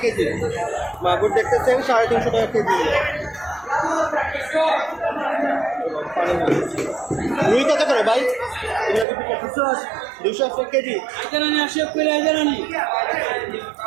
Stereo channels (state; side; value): drops out; left; at 9.1 s